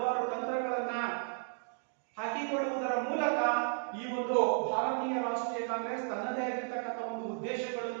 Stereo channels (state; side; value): silent; left; 55 dB below the other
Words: ತಂತ್ರಗಳನ್ನ ಹಾಕಿಕೊಳ್ಳುವುದರ ಮೂಲಕ ಈ ಒಂದು ಭಾರತೀಯ ರಾಷ್ಟ್ರೀಯ ಕಾಂಗ್ರೆಸ್ ತನ್ನದೇ ಆಗಿರ್ತಕ್ಕಂಥ ಒಂದು